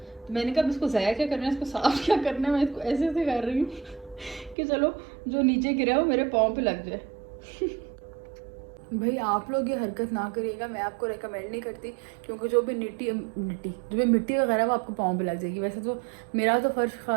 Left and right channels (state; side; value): drops out; left; at 4.5 s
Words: मैंने कहा इसको ज़ाया क्या करना है, इसको साफ क्या करना है, मैं इसको ऐसे ऐसे कर रही हूँ कि चलो जो नीचे गिरा है वो मेरे पाँव पे लग जाए। भाई आप लोग ये हरकत ना करिएगा, मैं आपको रेकमेंड नहीं करती, क्योंकि जो भी जो भी मिट्टी वगैरह वो आपको पाँव पे लग जाएगी। वैसे तो मेरा तो